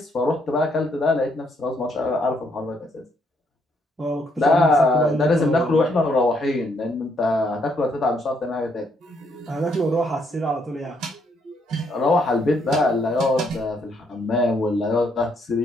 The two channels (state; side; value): normal; both; correlation 0.73